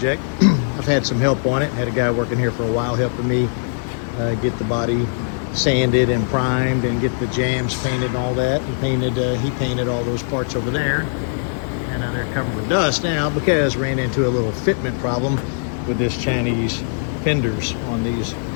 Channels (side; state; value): right; silent; 65 dB below the other